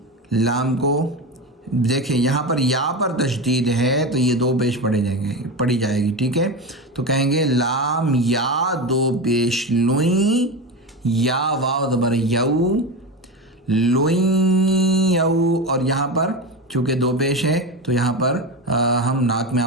لام کو دیکھیں یہاں پر یا پر تشدید ہے تو یہ دو پیش پڑھی جائے گی، ٹھیک ہے. تو کہیں گے لام یا دو پیش لوئیں، یا واو زبر یو، لوئیں یو. اور یہاں پر چونکہ دو پیش ہے تو یہاں پر ہم ناک میں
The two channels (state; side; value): normal; both; correlation 0.21